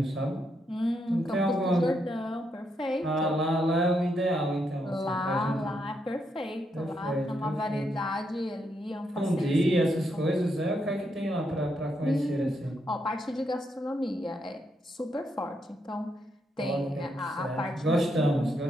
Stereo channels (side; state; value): both; normal; correlation 0.79